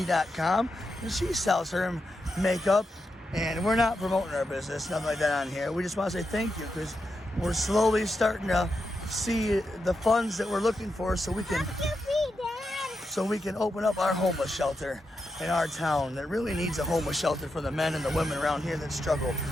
and she sells her makeup. And we're not promoting our business, nothing like that on here. We just want to say thank you because we're slowly starting to see the funds that we're looking for so we can open up our homeless shelter in our town that really needs a homeless shelter for the men and the women around here that struggle.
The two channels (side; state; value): both; normal; correlation 0.86